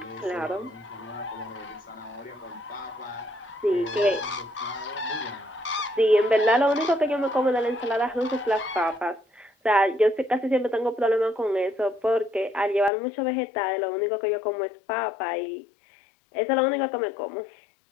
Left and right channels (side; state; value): right; drops out; at 12.9 s